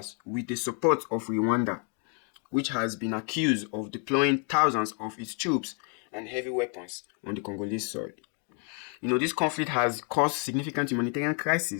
with the support of Rwanda, which has been accused of deploying thousands of its troops and heavy weapons on the Congolese soil. This conflict has caused significant humanitarian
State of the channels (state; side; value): quieter; right; 39.7 dB